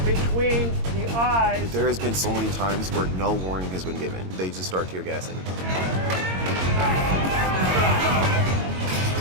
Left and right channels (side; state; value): left; late; 22 ms